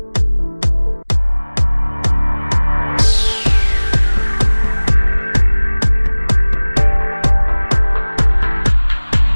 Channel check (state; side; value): inverted; both; correlation -1.00